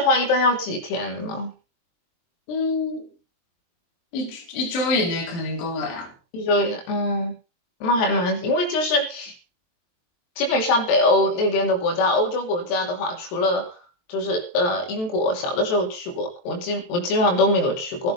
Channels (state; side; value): late; right; 23 ms